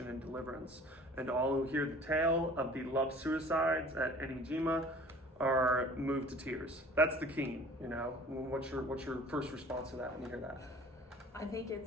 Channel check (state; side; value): normal; both; correlation 0.47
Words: and deliverance. And all who hear the tale of the love suicides at Enijima are moved to tears. That's the Keen, What's your first response to that when you hear that? I think